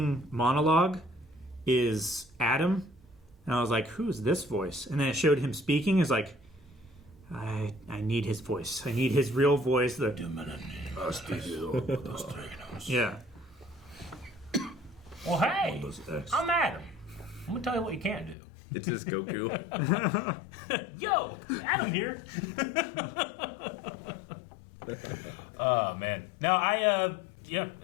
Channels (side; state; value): right; drops out; at 18.4 s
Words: monologue is Adam. And I was like, who's this voice? And then it showed him speaking. It's like, I need his voice. I need his real voice. Yeah. Well, hey, I'm Adam. I'm gonna tell you what you can't do. It's just Goku. Yo, Adam here. Oh man. Now